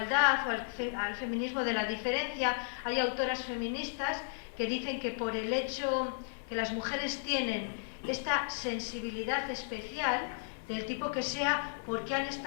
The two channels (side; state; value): right; silent; 55 dB below the other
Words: o al feminismo de la diferencia. Hay autoras feministas que dicen que por el hecho que las mujeres tienen esta sensibilidad especial, del tipo que sea, porque han